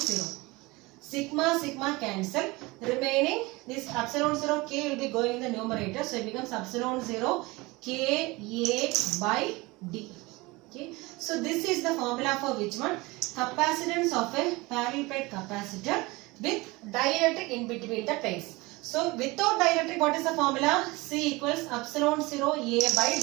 Sigma, sigma cancel. Remaining this epsilon 0 K will be going in the numerator. So it becomes epsilon 0 K A by D. Okay. So this is the formula for which one? Capacitance of a parallel plate capacitor with dielectric in between the plates. So without dielectric, what is the formula? C equals epsilon 0 A by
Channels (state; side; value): quieter; left; 22.9 dB